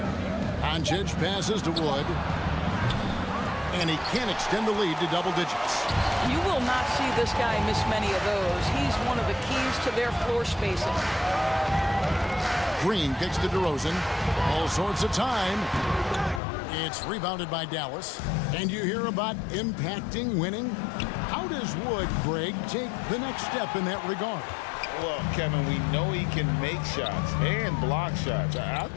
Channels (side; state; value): right; drops out; at 16.4 s